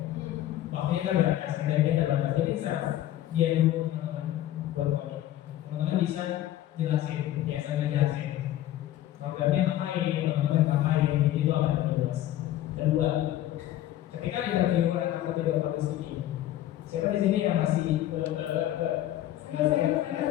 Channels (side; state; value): right; quieter; 13.3 dB